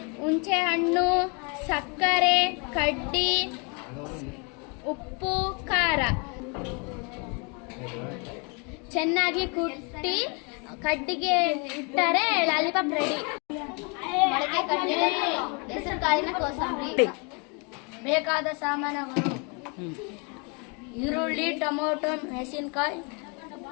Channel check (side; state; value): right; quieter; 33.7 dB